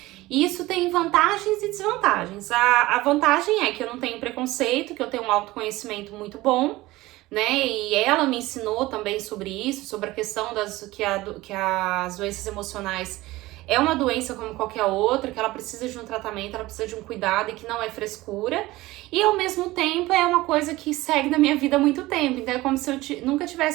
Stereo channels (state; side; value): quieter; left; 18.8 dB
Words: E isso tem vantagens e desvantagens. A vantagem é que eu não tenho preconceito, que eu tenho um autoconhecimento muito bom, né? E ela me ensinou também sobre isso, sobre a questão que as doenças emocionais é uma doença como qualquer outra, que ela precisa de um tratamento, ela precisa de um cuidado e que não é frescura. E ao mesmo tempo é uma coisa que segue na minha vida há muito tempo. Então é como se eu nunca